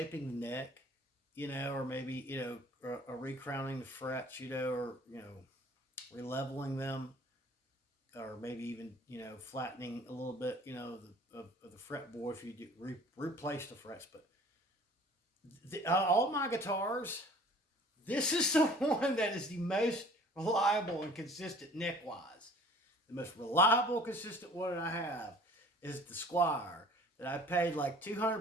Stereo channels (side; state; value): both; normal; correlation 0.49